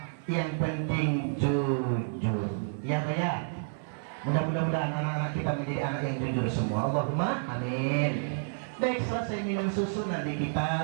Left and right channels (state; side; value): silent; left; 57 dB below the other